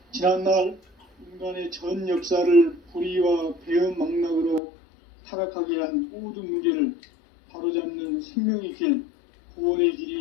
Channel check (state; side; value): drops out; right; at 4.6 s